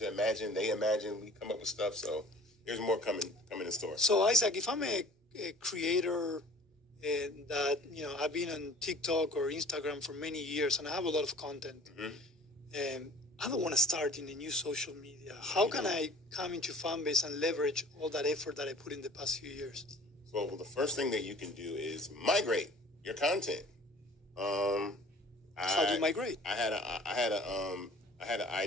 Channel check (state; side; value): normal; both; correlation 0.47